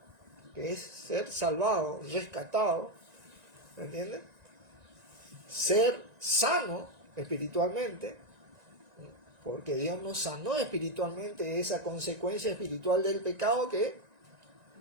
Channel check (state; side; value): late; left; 1.9 ms